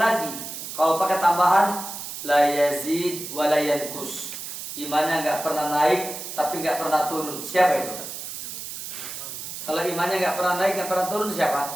lagi. Kalau pakai tambahan, la yazid wa la yanqus, imannya nggak pernah naik tapi nggak pernah turun. Siapa itu? Kalau imannya nggak pernah naik nggak pernah turun,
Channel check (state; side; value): noise; right; hiss, 8 dB below the sound